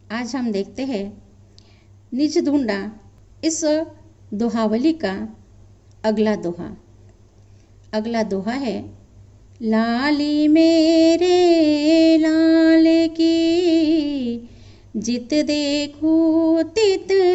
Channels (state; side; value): identical; both; correlation 1.00